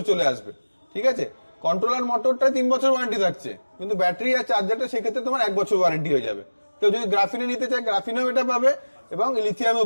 চলে আসবে, ঠিক আছে। কন্ট্রোলার, মোটরটা 3 বছর ওয়ারেন্টি থাকছে, কিন্তু ব্যাটারি আর চার্জারটা সেক্ষেত্রে তোমার 1 বছর ওয়ারেন্টি হয়ে যাবে। কেউ যদি গ্রাফিনে নিতে চায়, গ্রাফিনেও এটা পাবে এবং লিথিয়ামও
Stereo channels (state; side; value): inverted; both; correlation -1.00